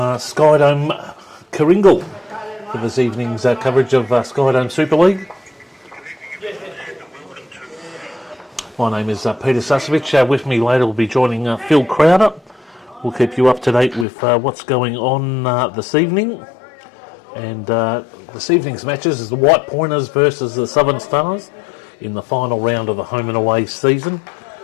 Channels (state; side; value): drops out; right; at 14.1 s